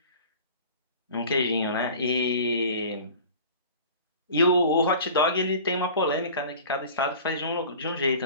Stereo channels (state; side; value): inverted; both; correlation -0.41